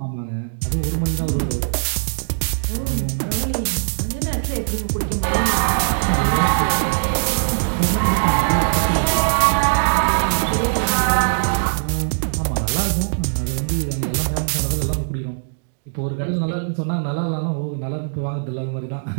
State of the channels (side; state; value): left; silent; digital silence